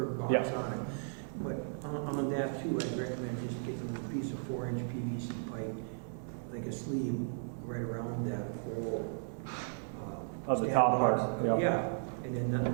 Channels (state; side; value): silent; left; 54 dB below the other